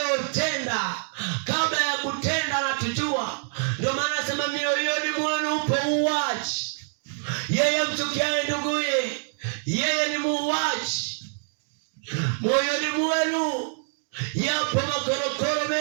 Kabla ya kutenda anatujua. Ndio maana anasema mioyoni mwenu upo uuaji. Yeye mchukiaye nduguye, yeye ni muuaji. Moyoni mwenu yapo makorokoro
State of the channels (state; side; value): silent; left; digital silence